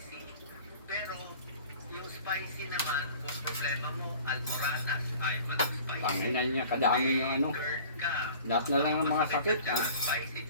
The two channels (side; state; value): both; inverted; correlation -0.46